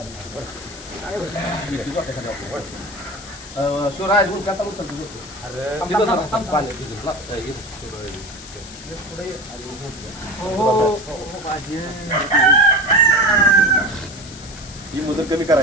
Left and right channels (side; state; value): left; noise; hiss, 16 dB below the sound